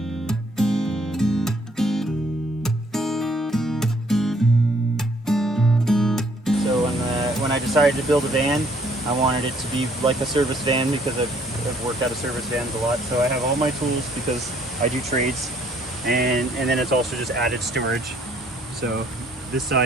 So when I decided to build a van, I wanted it to be like a service van because I've worked out of service vans a lot. So I have all my tools because I do trades, and then it's also just added storage. So this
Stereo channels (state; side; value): normal; both; correlation 0.63